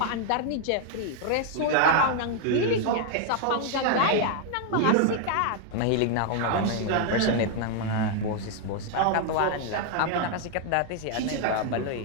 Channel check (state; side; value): different; both; correlation 0.00